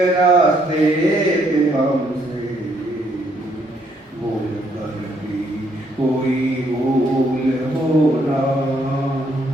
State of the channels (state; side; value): normal; both; correlation 0.70